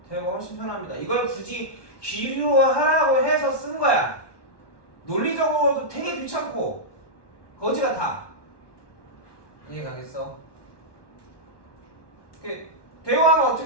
대우가 훨씬 편합니다. 이걸 굳이 기류하라고 해서 쓴 거야. 논리적으로도 되게 귀찮고 거지 같아. 이해 가겠어? 대우하면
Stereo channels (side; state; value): right; late; 1.2 ms